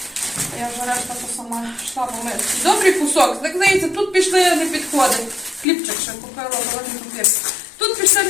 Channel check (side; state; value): right; drops out; at 5.7 s